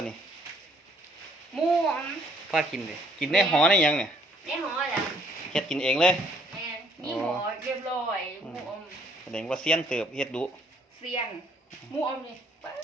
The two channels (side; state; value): both; normal; correlation 0.65